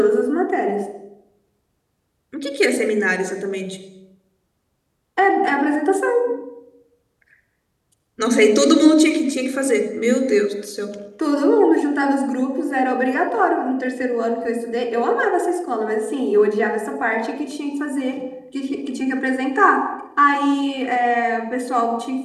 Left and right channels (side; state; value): both; identical; correlation 1.00